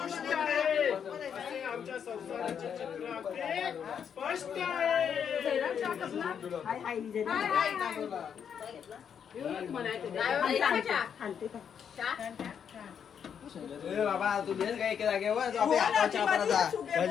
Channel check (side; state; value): right; quieter; 7.8 dB